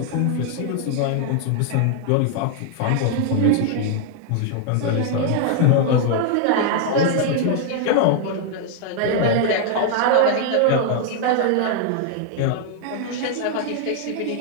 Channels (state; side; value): different; both; correlation 0.00